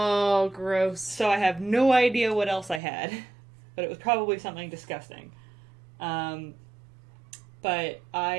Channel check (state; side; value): drops out; left; at 2.8 s